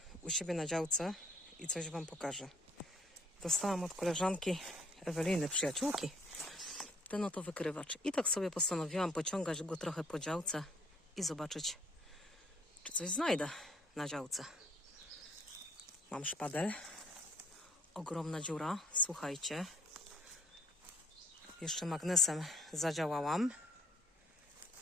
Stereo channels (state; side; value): normal; both; correlation 0.61